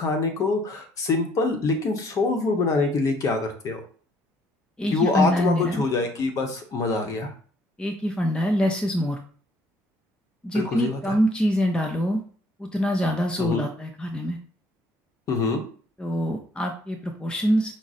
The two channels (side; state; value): both; normal; correlation 0.64